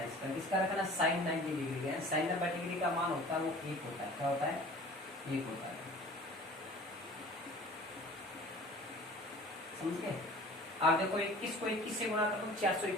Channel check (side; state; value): both; normal; correlation 0.45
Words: है इसका, किसका रखना, साइन 90 डिग्री का। साइन 90 डिग्री का मान होता है वो 1 होता है, क्या होता है, 1 होता है, समझ गए। आप देखो 21 को 21 से गुणा कर दो